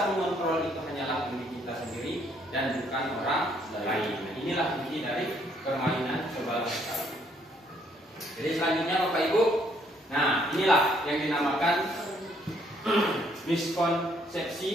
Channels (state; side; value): normal; both; correlation 0.68